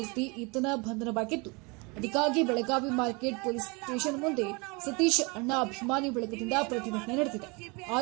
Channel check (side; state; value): left; quieter; 28.8 dB